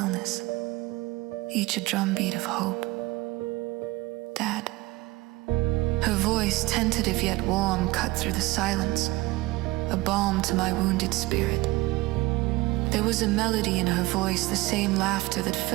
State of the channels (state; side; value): quieter; left; 20.6 dB